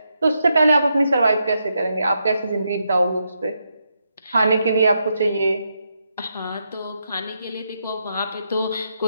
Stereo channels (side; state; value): both; inverted; correlation -0.82